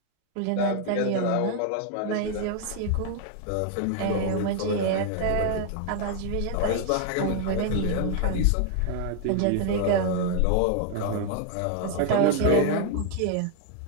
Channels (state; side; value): different; both; correlation 0.00